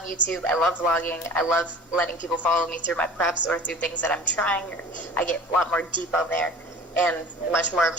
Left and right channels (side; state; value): both; normal; correlation 0.42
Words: YouTube. I love vlogging. I love letting people follow me through my preps or through things that I'm trying. I get a lot more deep on there, and much more of